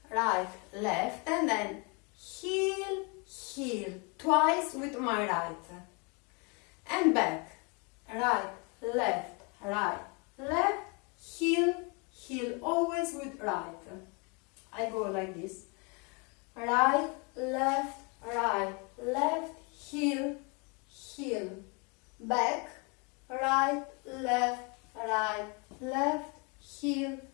and then heel, twice with my right. And back, right, left, heel, always with right. I go like this, right, left, heel, back, right, left, heel.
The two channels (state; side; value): quieter; right; 31.9 dB